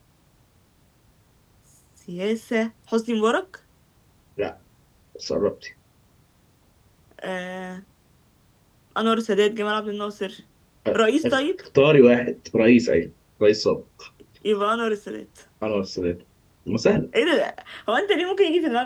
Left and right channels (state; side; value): identical; both; correlation 1.00